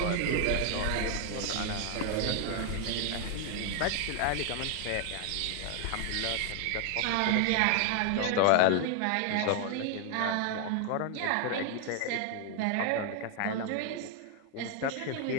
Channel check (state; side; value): different; both; correlation 0.00